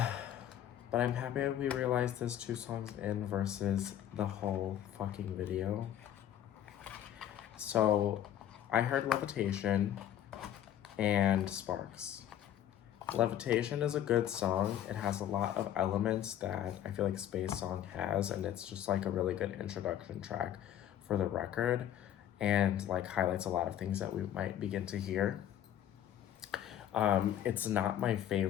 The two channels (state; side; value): quieter; right; 10.9 dB